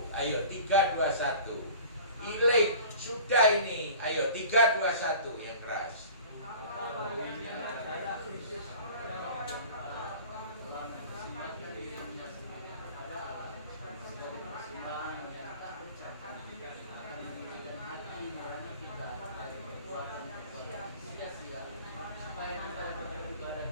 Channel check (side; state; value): both; inverted; correlation -0.42